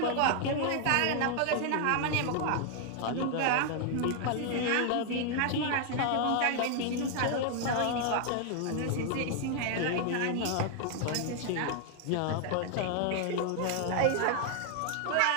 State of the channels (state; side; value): different; both; correlation 0.00